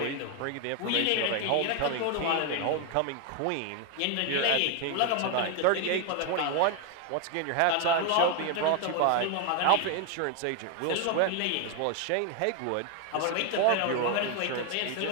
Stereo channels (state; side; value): different; both; correlation 0.01